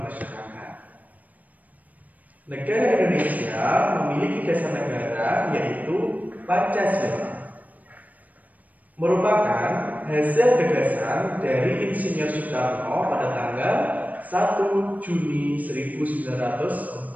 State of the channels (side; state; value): left; late; 0.076 ms